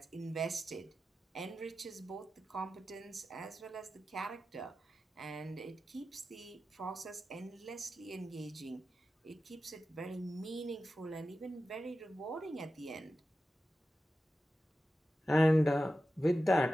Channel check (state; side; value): normal; both; correlation 0.92